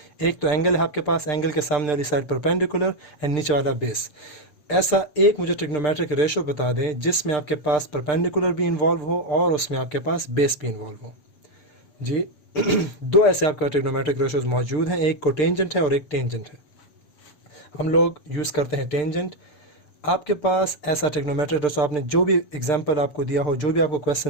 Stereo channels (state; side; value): late; right; 6.7 ms